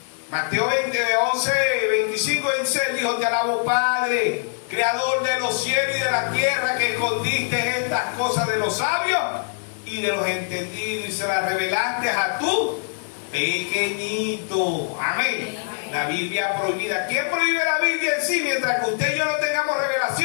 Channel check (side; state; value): right; silent; digital silence